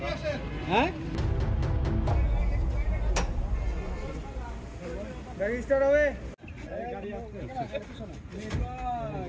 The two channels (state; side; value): identical; both; correlation 1.00